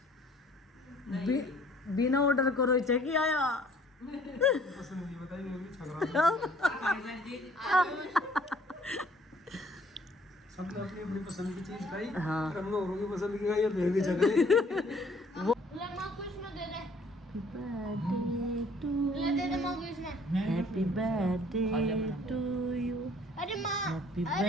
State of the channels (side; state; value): both; normal; correlation 0.57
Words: बिना ऑर्डर करो चेक आया। पसंद नहीं बताई मैं भी छक रहा हूं। सबने अपनी अपनी पसंद की चीज खाई। हाँ। और हमने औरों की पसंद की खाई और फिर भी छक रहे। ले मां कुछ में दे दे। ले दे दे मां कुछ में। Happy birthday to you. अरे